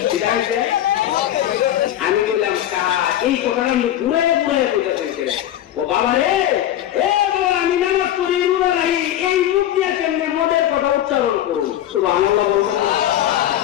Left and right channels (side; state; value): right; quieter; 12.1 dB